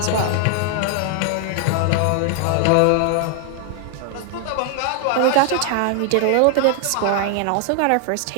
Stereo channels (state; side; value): different; both; correlation 0.00